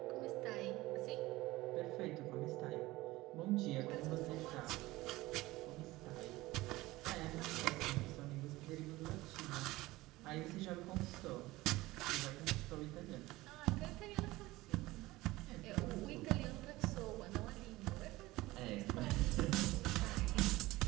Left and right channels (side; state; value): left; quieter; 19.0 dB